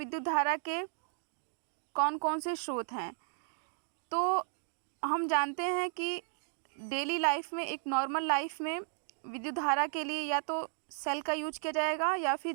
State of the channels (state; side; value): silent; left; digital silence